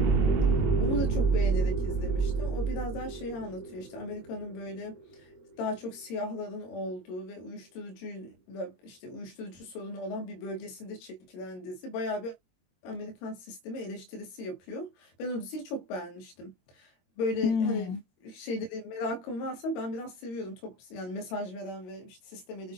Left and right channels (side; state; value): right; late; 22 ms